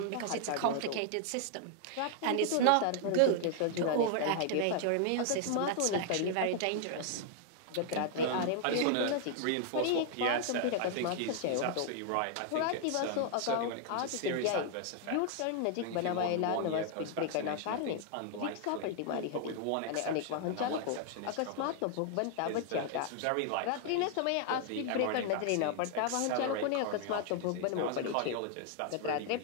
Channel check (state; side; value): different; both; correlation 0.00